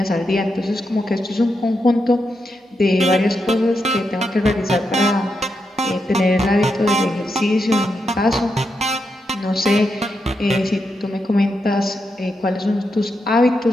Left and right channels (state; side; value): normal; both; correlation 0.84